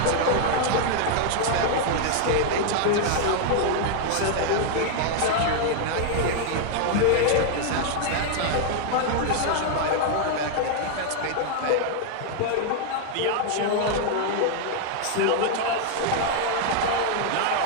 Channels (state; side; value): different; both; correlation 0.00